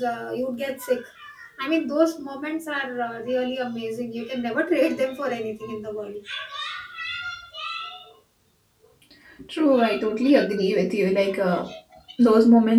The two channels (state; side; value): identical; both; correlation 1.00